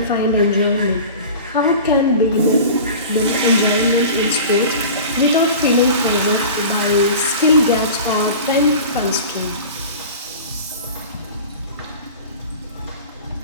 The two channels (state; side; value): inverted; both; correlation -0.36